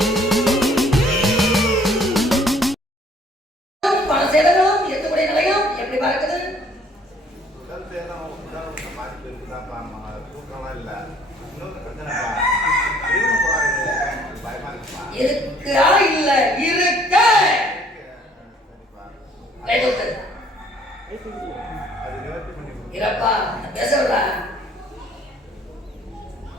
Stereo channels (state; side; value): normal; both; correlation 0.59